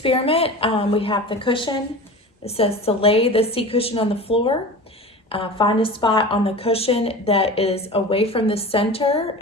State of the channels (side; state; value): both; normal; correlation 0.34